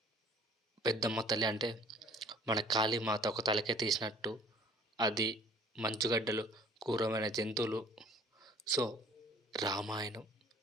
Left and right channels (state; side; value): normal; both; correlation 0.53